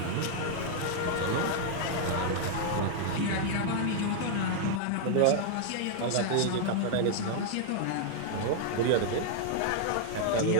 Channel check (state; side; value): different; both; correlation -0.01